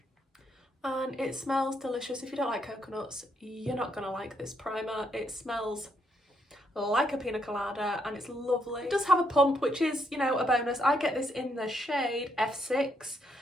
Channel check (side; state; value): both; normal; correlation 0.75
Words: and it smells delicious. If you don't like coconuts, you're not gonna like this primer. It smells like a pina colada and it's lovely. It does have a pump, which is, you know, a bonus. I get this in the shade F6.